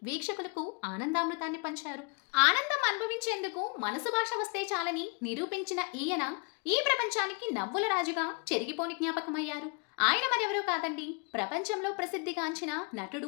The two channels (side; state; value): right; quieter; 33.4 dB